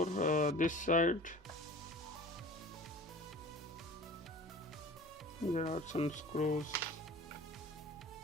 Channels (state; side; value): normal; both; correlation 0.41